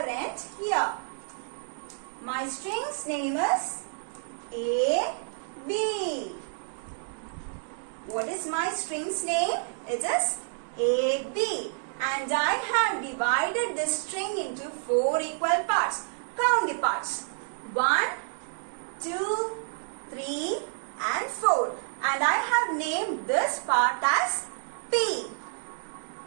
end here. My string's name is A, B. What is my string's name? It is A, B. And I have divided this string into 4 equal parts. Count the parts. 1, 2, 3 and 4. And I have named this part as P.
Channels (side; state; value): left; silent; digital silence